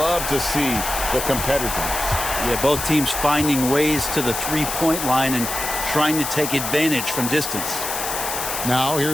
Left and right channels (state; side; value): noise; left; hiss, 4 dB below the sound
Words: to see the competitiveness. Yeah, both teams finding ways to the three-point line and trying to take advantage from distance. Now